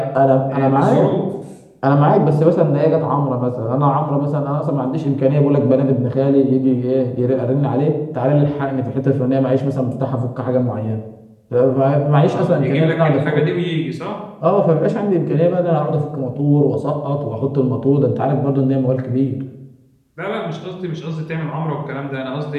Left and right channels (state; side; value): identical; both; correlation 1.00